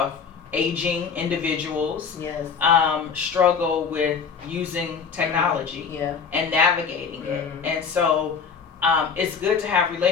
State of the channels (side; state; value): right; quieter; 6.0 dB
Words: aging individuals struggle with using technology and navigating it. And so it's good to have